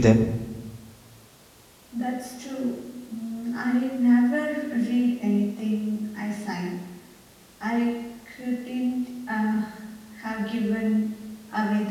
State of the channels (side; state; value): both; identical; correlation 1.00